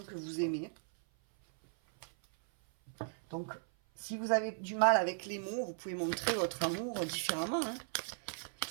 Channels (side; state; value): left; silent; 54 dB below the other